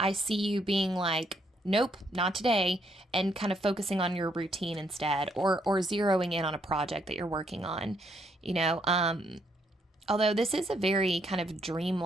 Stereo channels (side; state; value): both; normal; correlation 0.73